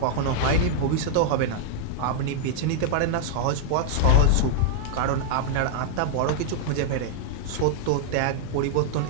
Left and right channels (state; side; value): different; both; correlation -0.01